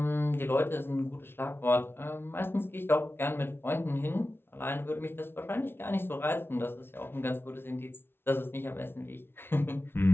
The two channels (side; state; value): right; late; 0.11 ms